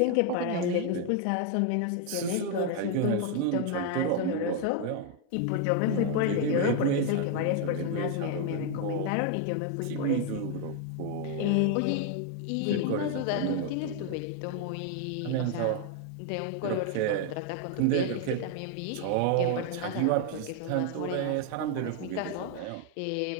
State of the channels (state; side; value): different; both; correlation 0.00